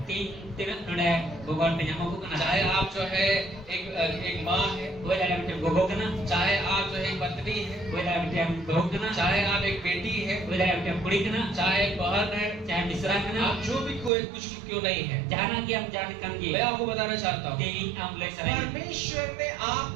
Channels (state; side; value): drops out; left; at 14.1 s